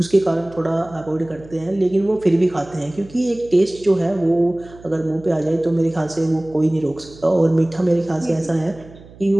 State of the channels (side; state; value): right; noise; hum, 21 dB below the sound